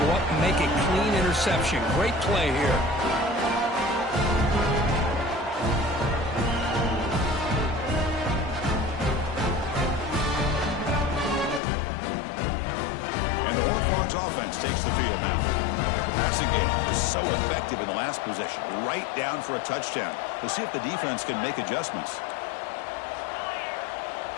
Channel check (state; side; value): drops out; right; at 11.6 s